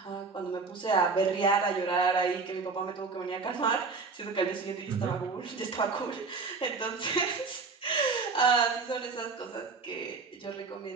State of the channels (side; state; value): left; quieter; 4.5 dB